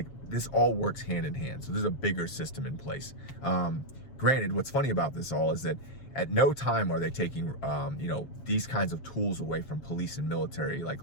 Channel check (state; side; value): late; right; 7.4 ms